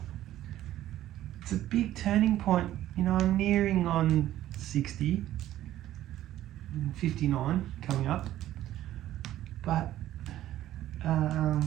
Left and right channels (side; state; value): left; quieter; 13.4 dB